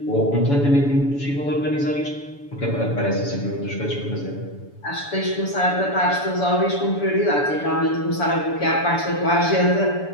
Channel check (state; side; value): late; right; 7.0 ms